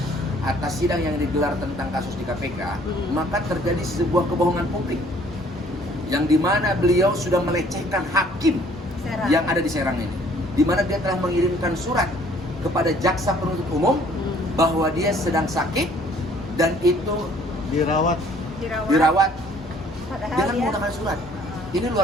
atas sidang yang digelar tentang kasus di KPK, Hmm. maka terjadi sebuah kebohongan publik yang dimana beliau sudah melecehkan hakim Serang. yang ada di Serang ini, dimana dia telah mengirimkan surat kepada jaksa penuntut umum bahwa dia sedang sakit dan itu dirawat. dirawat Padahal dengan dia menggunakan surat. Ini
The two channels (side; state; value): both; normal; correlation 0.58